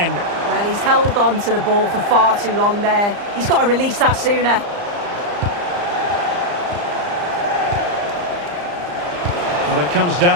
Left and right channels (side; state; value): left; late; 34 ms